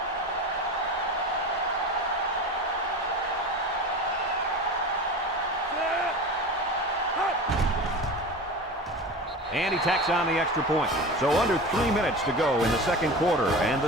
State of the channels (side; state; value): both; normal; correlation 0.31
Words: And he tacks on the extra point. So under 3 minutes to go in the 2nd quarter. And